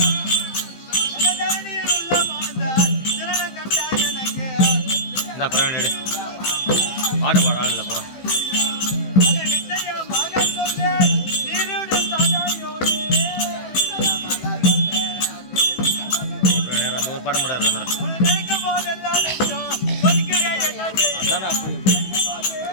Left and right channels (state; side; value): late; right; 15 ms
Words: பிரவீன் எடு பாட்டு பாட ஆள் இல்லை போகிறோம். தானே போய்